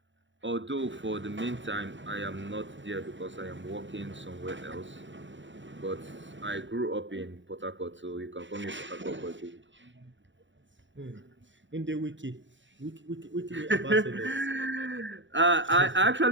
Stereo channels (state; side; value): late; left; 0.54 ms